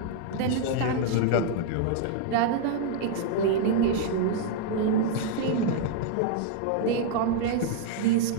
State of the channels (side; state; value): both; different; correlation -0.01